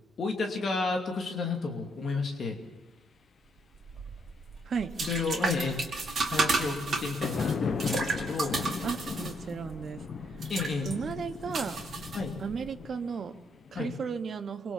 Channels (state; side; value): normal; both; correlation 0.73